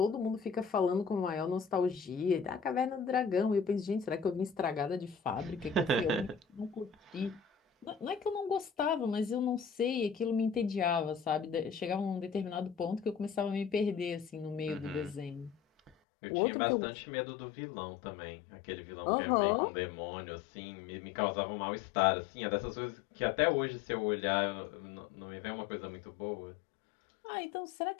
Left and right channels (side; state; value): right; drops out; at 16.0 s